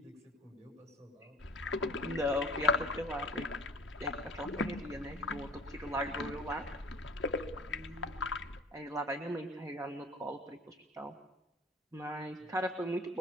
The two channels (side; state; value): both; normal; correlation 0.47